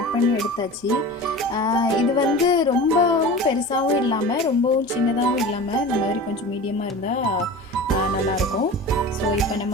பண்ணி எடுத்தாச்சு. இது வந்து ரொம்பவும் பெருசாகவும் இல்லாமல் ரொம்பவும் சின்னதாகவும் இல்லாமல் இந்த மாதிரி கொஞ்சம் மீடியமாக இருந்தால் நல்லாயிருக்கும். ஸோ இப்போ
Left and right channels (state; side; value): normal; both; correlation 0.34